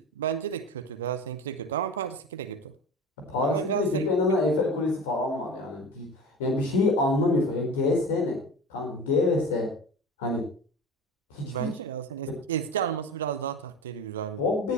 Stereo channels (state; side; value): normal; both; correlation 0.33